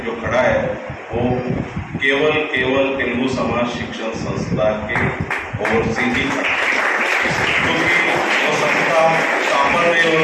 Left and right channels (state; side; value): identical; both; correlation 1.00